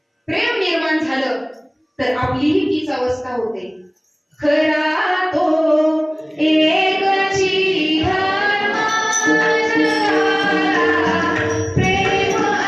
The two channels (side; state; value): both; identical; correlation 1.00